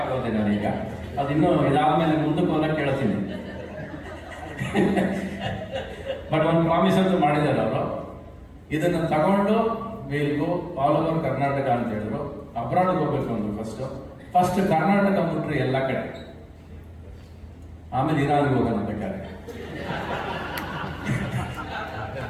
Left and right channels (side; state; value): both; identical; correlation 1.00